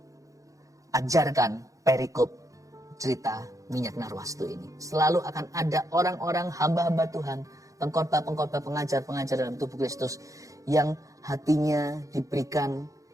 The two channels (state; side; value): late; left; 0.16 ms